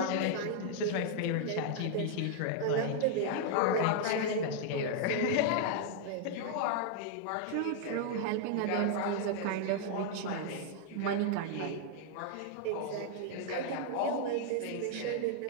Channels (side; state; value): both; different; correlation -0.01